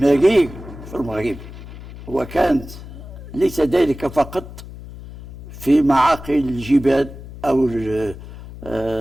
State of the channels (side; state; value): left; noise; hum, 14 dB below the sound